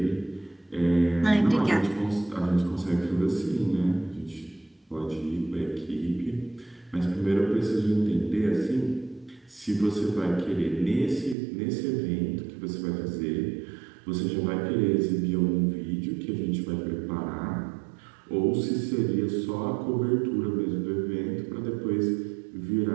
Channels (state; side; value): drops out; left; at 11.4 s